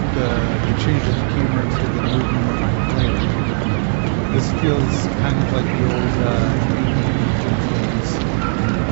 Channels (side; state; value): left; silent; digital silence